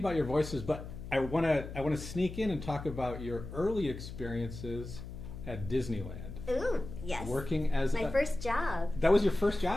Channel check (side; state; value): left; noise; hum, 10 dB below the sound